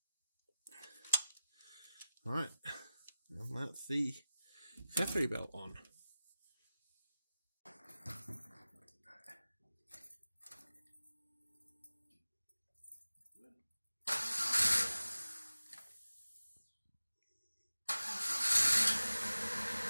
Alright, and that's the accessory belt on.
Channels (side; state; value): both; inverted; correlation -0.95